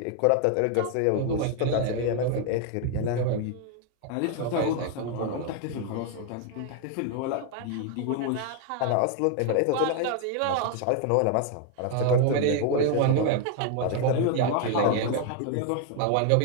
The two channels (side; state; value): both; different; correlation 0.01